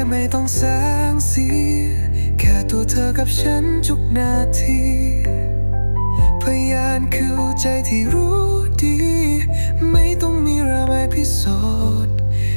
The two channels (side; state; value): both; inverted; correlation -1.00